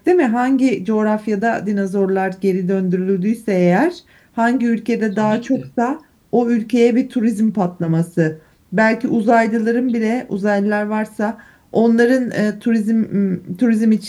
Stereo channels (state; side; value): identical; both; correlation 1.00